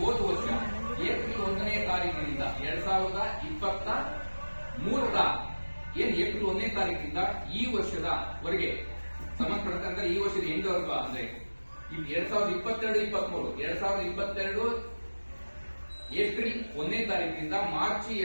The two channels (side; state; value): both; inverted; correlation -1.00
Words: ಹೋದ ವರ್ಷ ಏಪ್ರಿಲ್ 1ನೇ ತಾರೀಕಿನಿಂದ 2023ರ ಏಪ್ರಿಲ್ 1ನೇ ತಾರೀಕಿನಿಂದ ಈ ವರ್ಷದವರೆಗೆ ಸಂಬಂಧಪಟ್ಟಂತೆ ಅಂದ್ರೆ ಈ ವರ್ಷದ ಎಂಡ್ವರೆಗೂ ಅಂದ್ರೆ 2022 ಏಪ್ರಿಲ್ 1ನೇ ತಾರೀಕಿನಿಂದ ಮಾರ್ಚ್